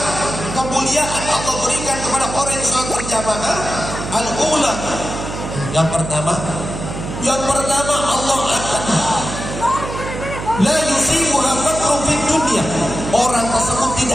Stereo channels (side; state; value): right; noise; hum, 7 dB below the sound